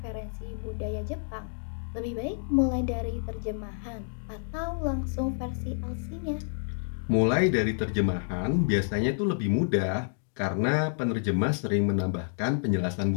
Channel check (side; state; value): right; silent; digital silence